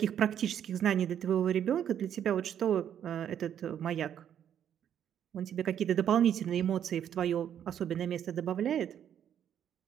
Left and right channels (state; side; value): quieter; left; 9.5 dB